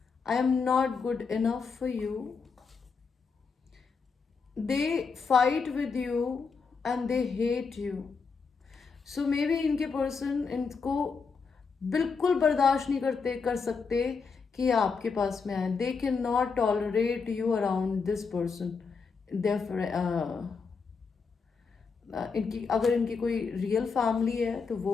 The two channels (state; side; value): quieter; right; 5.1 dB